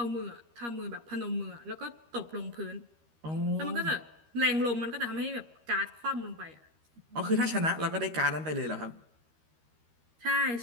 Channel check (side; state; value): left; late; 13 ms